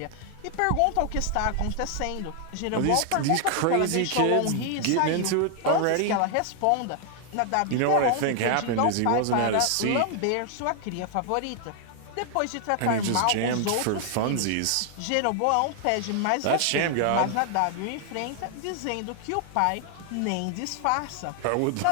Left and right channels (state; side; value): different; both; correlation 0.00